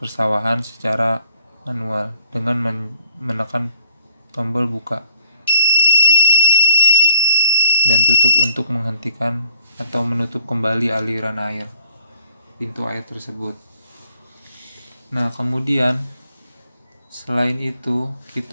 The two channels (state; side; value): inverted; both; correlation -0.69